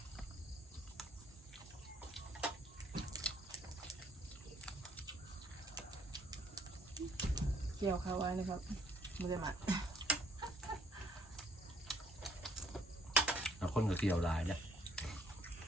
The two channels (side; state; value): both; normal; correlation 0.63